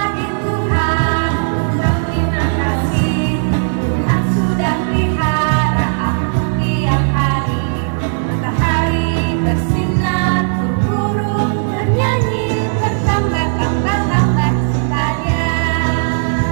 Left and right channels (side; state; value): left; silent; digital silence